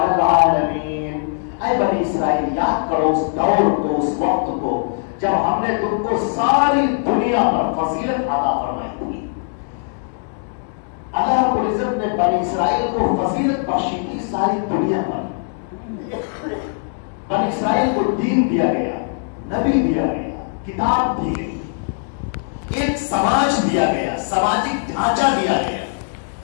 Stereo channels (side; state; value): right; silent; digital silence